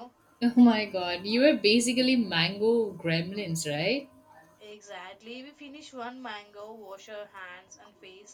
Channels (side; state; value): both; identical; correlation 1.00